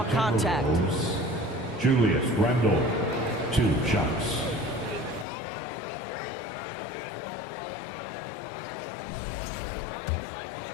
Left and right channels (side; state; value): right; drops out; at 5.2 s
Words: contact. Julius Randle, 2 shots.